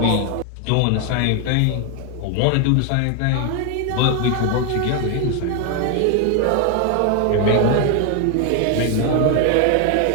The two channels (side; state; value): both; different; correlation 0.01